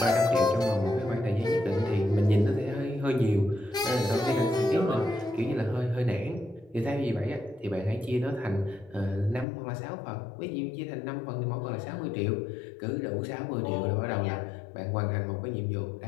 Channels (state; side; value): drops out; right; at 9.5 s